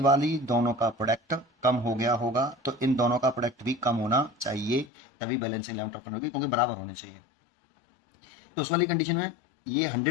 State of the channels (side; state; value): right; drops out; at 4.9 s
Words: दोनों का प्रोडक्ट कम हो गया होगा, तो इन दोनों का प्रोडक्ट भी कम होना चाहिए, तभी बैलेंसिंग लेवल ऑफ टर्न होगी, क्योंकि बराबर होने चाहिए। तो उस वाली कंडीशन में ये